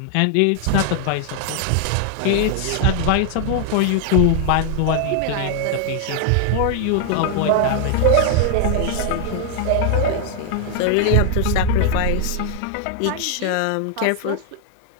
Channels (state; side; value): different; both; correlation 0.00